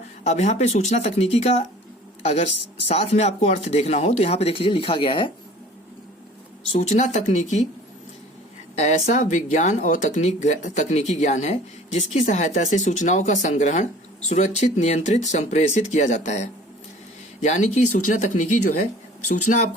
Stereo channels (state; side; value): normal; both; correlation 0.47